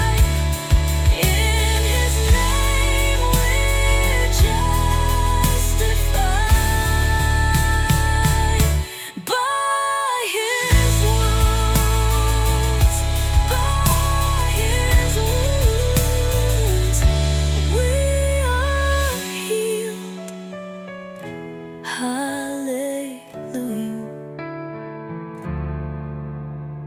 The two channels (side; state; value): both; identical; correlation 1.00